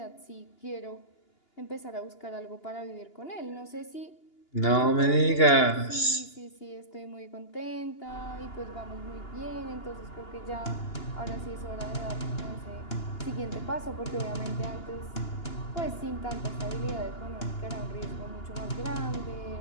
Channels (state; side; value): late; right; 2.9 ms